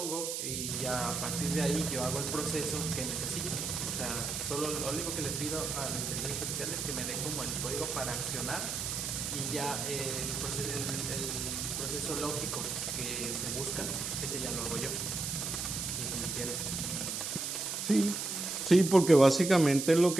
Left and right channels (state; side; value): noise; right; hiss, 3 dB below the sound